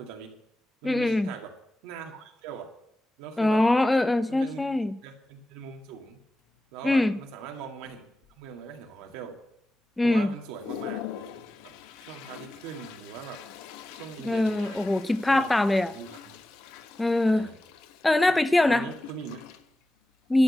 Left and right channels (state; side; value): normal; both; correlation 0.94